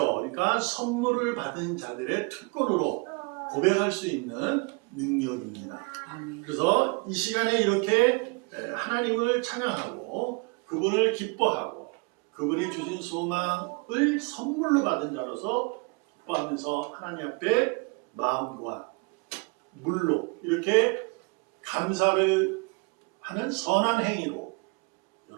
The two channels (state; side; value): quieter; left; 31.4 dB